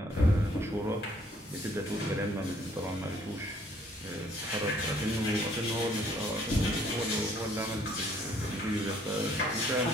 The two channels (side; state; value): both; normal; correlation 0.63